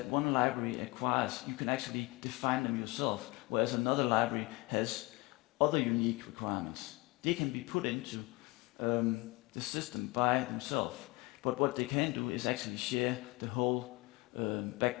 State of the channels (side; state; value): right; quieter; 23.8 dB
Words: one library acquires, you can actually define them yourself, whereas another library has other unique requirements. They can be put into the system by themselves, but what they can do is actually share the whole